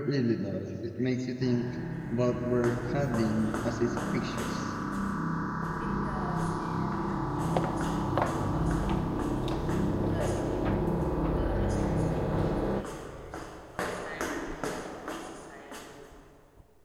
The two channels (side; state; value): both; identical; correlation 1.00